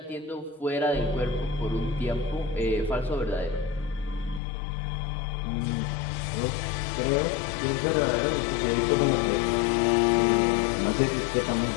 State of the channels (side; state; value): right; drops out; at 4.4 s